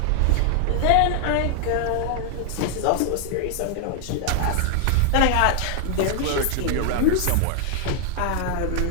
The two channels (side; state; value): both; different; correlation 0.00